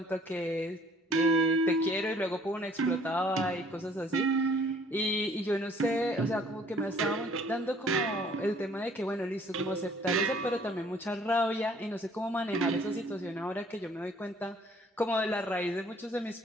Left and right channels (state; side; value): normal; both; correlation 0.57